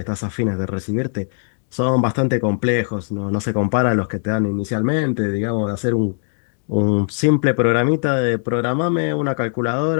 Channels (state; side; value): silent; right; 66 dB below the other